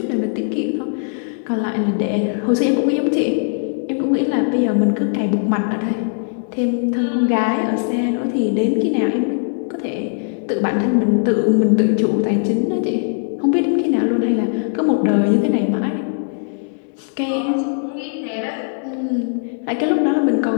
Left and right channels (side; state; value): right; silent; 65 dB below the other